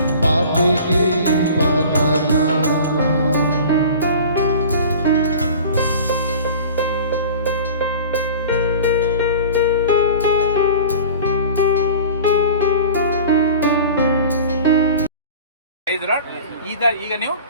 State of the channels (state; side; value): inverted; both; correlation -0.40